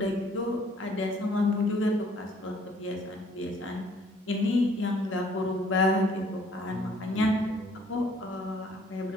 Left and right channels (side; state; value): both; normal; correlation 0.60